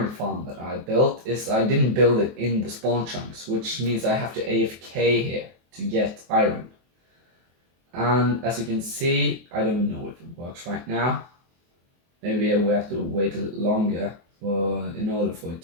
farm that I built is I didn't build it in the spawn chunks, which means I have to AFK here to get iron. And as you can see, I don't know if it works right now. Maybe we have to wait a little longer in order for it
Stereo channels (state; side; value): late; left; 23 ms